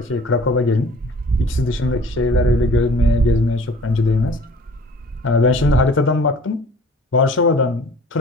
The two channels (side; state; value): both; normal; correlation 0.47